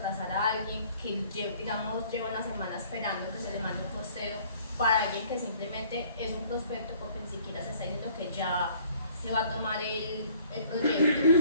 a alguien que lleva una semana esperando que se le mande un costeo para alguien que simplemente es un prospecto, porque ni siquiera se está diciendo que ya se va a tomar el proyecto,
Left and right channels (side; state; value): both; inverted; correlation -0.57